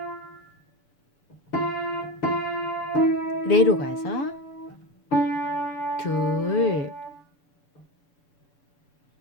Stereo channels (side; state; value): right; late; 6.9 ms